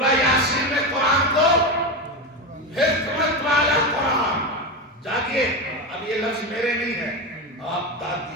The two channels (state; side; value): normal; both; correlation 0.17